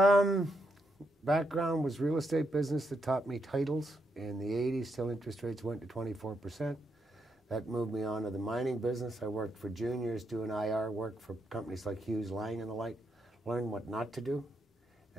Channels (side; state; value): both; normal; correlation 0.80